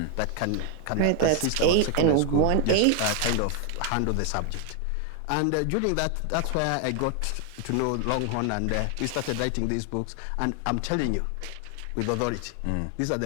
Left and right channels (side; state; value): both; different; correlation 0.00